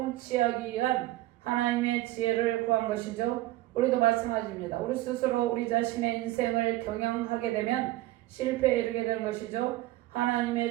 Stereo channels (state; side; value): quieter; left; 17.0 dB